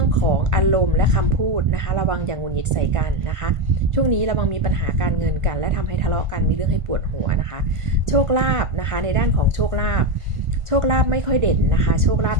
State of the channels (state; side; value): late; left; 1.5 ms